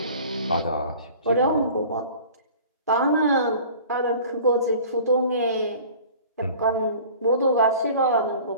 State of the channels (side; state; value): both; inverted; correlation -0.45